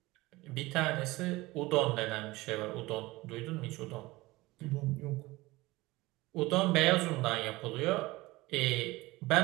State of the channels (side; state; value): left; quieter; 20.3 dB